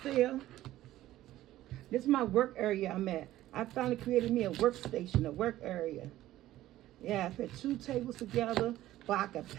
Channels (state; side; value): quieter; left; 14.7 dB